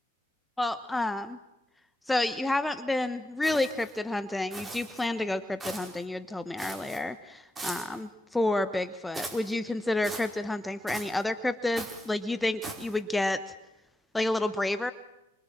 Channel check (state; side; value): normal; both; correlation 0.90